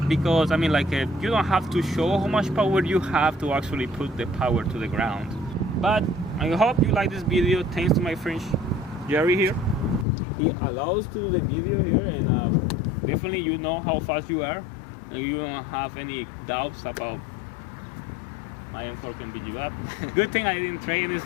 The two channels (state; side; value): drops out; right; at 10.1 s